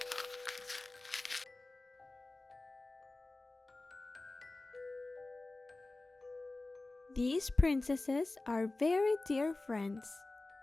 These princesses are very dear friends.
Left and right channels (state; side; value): quieter; right; 3.0 dB